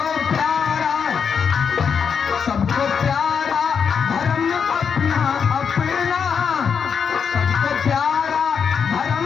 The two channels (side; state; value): right; quieter; 6.6 dB